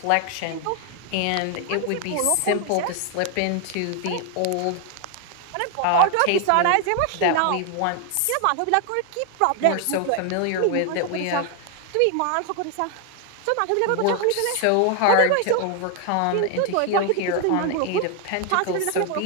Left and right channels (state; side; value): different; both; correlation 0.00